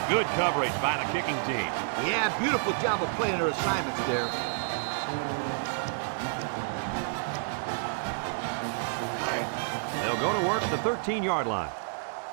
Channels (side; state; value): left; silent; digital silence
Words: Good coverage by the kicking team. Yeah, beautiful job of playing their assignments there. They'll go to work at the 13-yard line.